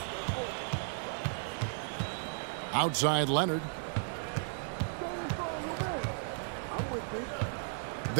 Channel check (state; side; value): silent; left; digital silence